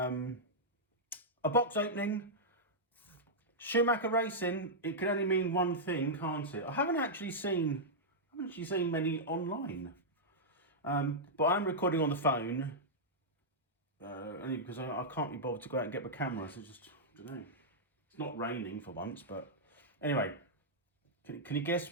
box opening. Schumacher racing. It can only mean one thing, can't it? I haven't actually seen many online. But I'm recording on the phone. Only because I can't be bothered to go out and get my camera. So just I don't know. It's not raining for once, but anyway. Can you guess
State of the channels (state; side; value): normal; both; correlation -0.08